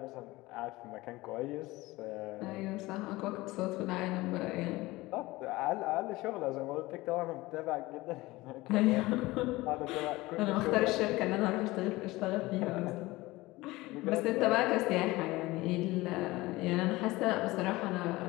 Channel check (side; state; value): right; quieter; 20.0 dB